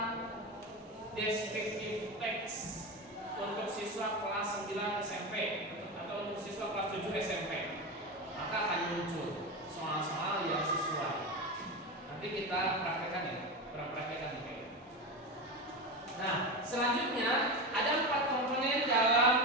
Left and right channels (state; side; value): normal; both; correlation 0.20